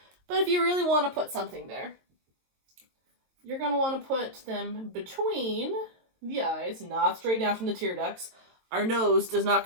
But if you really want to put something there, you're going to want to put them between the eyes, not straight down from the tear ducts. Our nose does not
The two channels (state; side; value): late; left; 22 ms